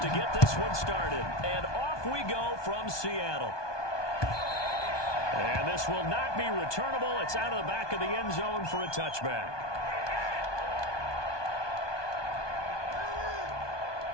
get this one started. And off we go from Seattle. And this will not be returnable. It's out of the back of the end zone for a touchback.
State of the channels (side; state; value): right; late; 1.2 ms